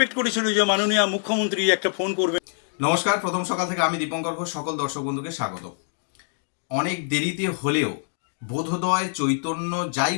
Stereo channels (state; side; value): silent; right; 62 dB below the other